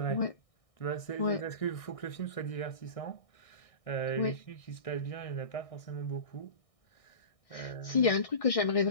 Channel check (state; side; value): late; right; 1.6 ms